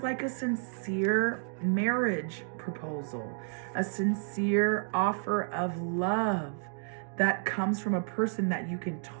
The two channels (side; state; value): left; silent; 57 dB below the other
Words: like a sincere marriage proposal, a sincere offer of love that comes from a person that you can